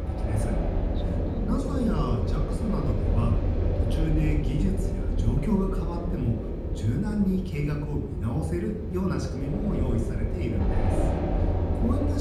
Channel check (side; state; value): both; identical; correlation 1.00